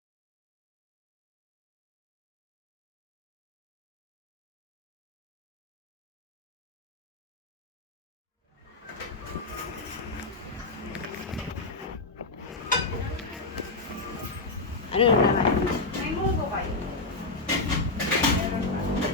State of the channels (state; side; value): quieter; right; 3.4 dB